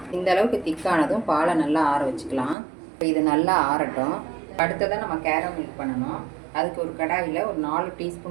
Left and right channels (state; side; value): drops out; left; at 2.6 s